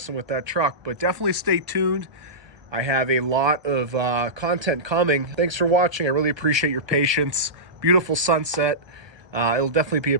with that truck. But definitely stay tuned. I have a lot of content coming. Thanks for watching. I really appreciate your patience. Beautiful sunset. It'll definitely be a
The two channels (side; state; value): left; late; 1.3 ms